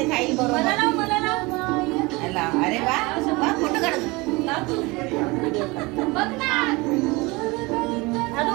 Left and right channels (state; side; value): quieter; left; 24.1 dB